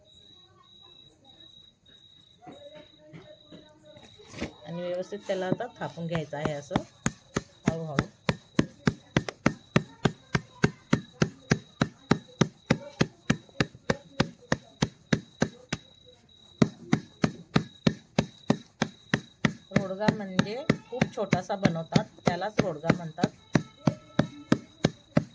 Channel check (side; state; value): both; identical; correlation 1.00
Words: आणि व्यवस्थित त्याला आता थापून घ्यायचं आहे असं हळूहळू। रोडगा म्हणजे खूप छोटासा बनवतात, त्यालाच रोडगा म्हणतात।